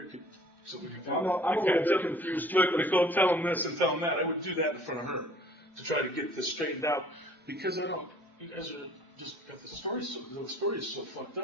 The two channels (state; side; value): normal; both; correlation 0.53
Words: could. So we could. I'm a little bit confused. Look, Nicole, tell them this and tell them that. I would do that in front of her to try to get this straightened out because I don't. You guys are just got the story. The story is so fucked